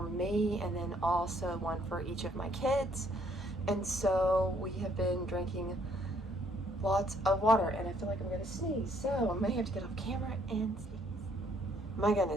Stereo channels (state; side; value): normal; both; correlation 0.66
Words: and then also one for each of my kids. And so we have been drinking lots of water, and I feel like I'm gonna sneeze, so I may have to get off camera and sneeze. My